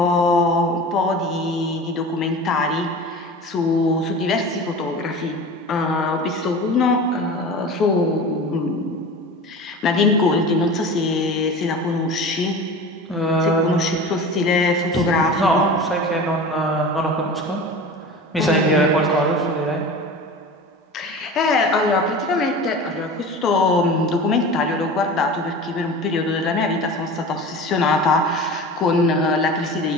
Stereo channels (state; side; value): normal; both; correlation 0.35